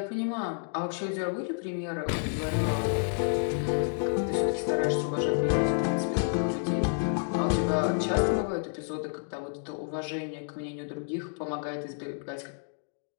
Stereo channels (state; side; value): silent; right; digital silence